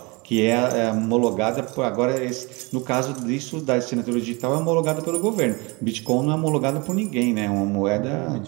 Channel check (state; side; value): quieter; left; 27.4 dB